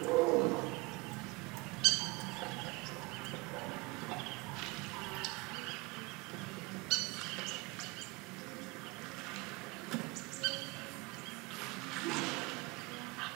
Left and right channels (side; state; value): left; quieter; 24.7 dB